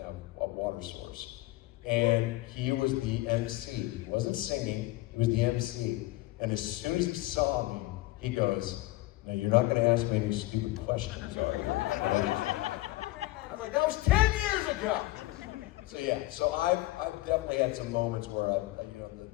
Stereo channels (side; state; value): right; quieter; 18.6 dB